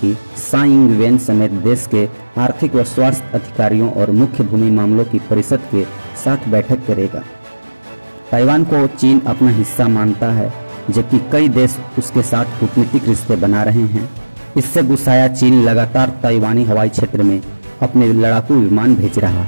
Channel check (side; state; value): both; inverted; correlation -1.00